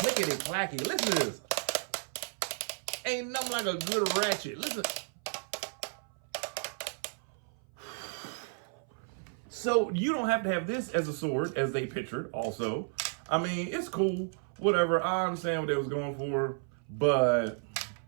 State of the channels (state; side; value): silent; left; 56 dB below the other